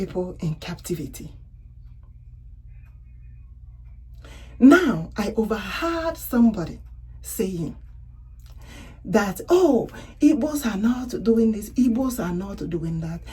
in captivity. Now, I overheard somebody saying that, oh, Igbos are not doing this, Igbos are not doing that,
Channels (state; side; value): identical; both; correlation 1.00